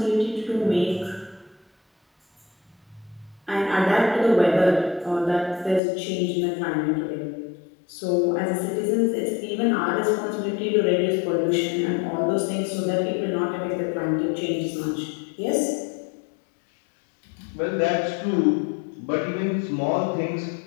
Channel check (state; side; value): drops out; right; at 5.8 s